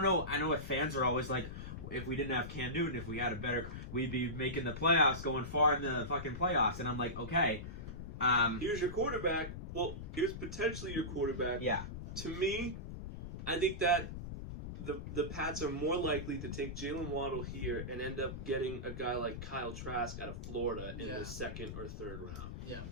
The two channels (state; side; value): noise; left; rumble, 8 dB below the sound